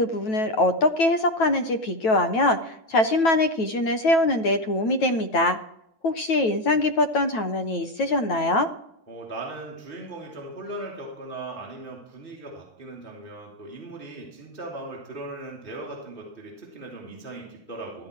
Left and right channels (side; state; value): right; late; 9.2 ms